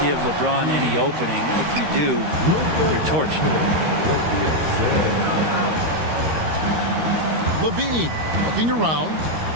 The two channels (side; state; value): left; late; 13 ms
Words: give LeBron any opening. If you do, you're torched. Levine looking around.